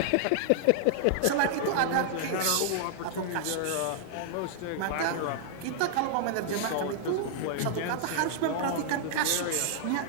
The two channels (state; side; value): different; both; correlation -0.01